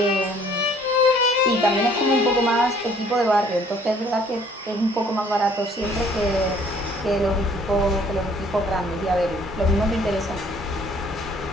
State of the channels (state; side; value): normal; both; correlation 0.58